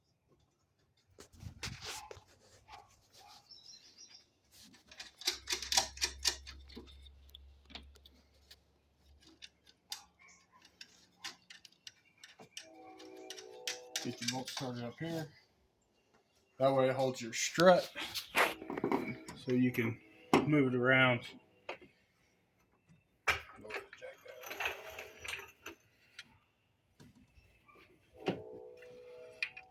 Get your bolt started up here. That way it holds your strut so you can move it around.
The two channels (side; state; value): both; identical; correlation 1.00